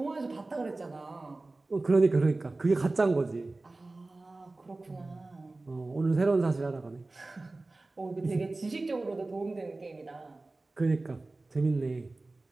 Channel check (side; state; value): left; quieter; 3.2 dB